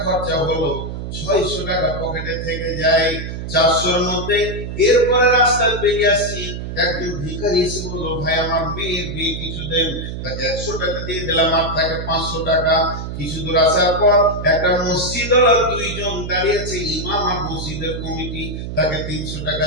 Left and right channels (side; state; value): right; noise; hum, 6 dB below the sound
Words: খরচা হলো, 600 টাকা পকেটে থেকে যায় 400-র মধ্যে। এরপরে রাস্তায় বেরিয়ে আসছি, একজন ভিখারি এসে বললো, ভাই আমার মেয়ের বিয়ে কিছু দেন। তাকে 100 টাকা দিয়ে দিলাম, আর থাকে 500 টাকা। কিছু দূর আসার পর একটা মসজিদ ওরা 2 জন দাঁড়িয়েছে, ইমাম আর মসজিদের কমিটি। তাকে 300 টাকা